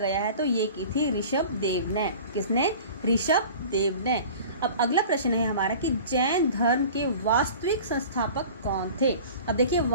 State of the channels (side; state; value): both; inverted; correlation -0.41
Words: है तो ये की थी ऋषभ देव ने। किसने? ऋषभ देव ने। अब अगला प्रश्न है हमारा कि जैन धर्म के वास्तविक संस्थापक कौन थे? अब देखिए